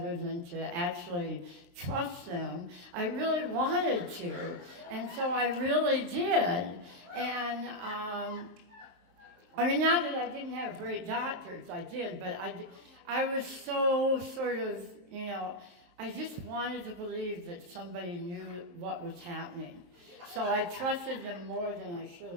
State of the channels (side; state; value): left; late; 23 ms